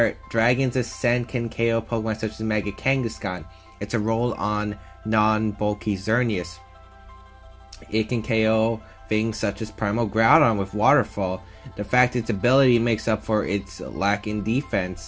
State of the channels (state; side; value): identical; both; correlation 1.00